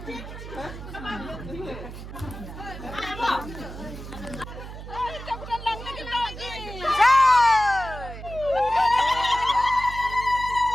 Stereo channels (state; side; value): noise; right; hum, 11 dB below the sound